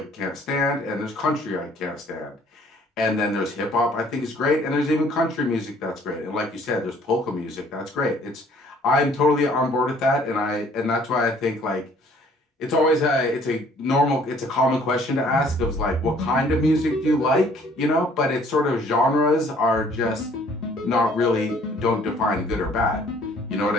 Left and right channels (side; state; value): both; normal; correlation 0.58